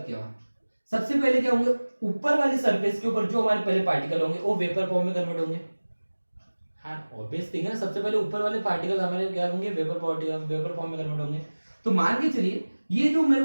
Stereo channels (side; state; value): both; inverted; correlation -1.00